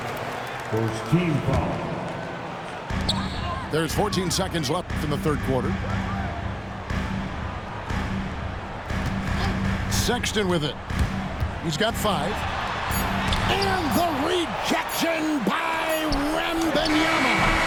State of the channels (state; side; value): identical; both; correlation 1.00